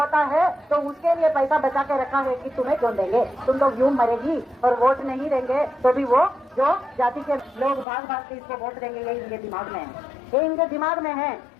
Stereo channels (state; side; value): drops out; right; at 7.9 s